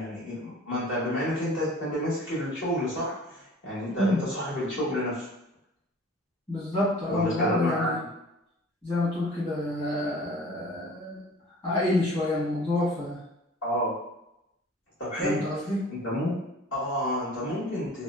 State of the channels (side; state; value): both; normal; correlation 0.46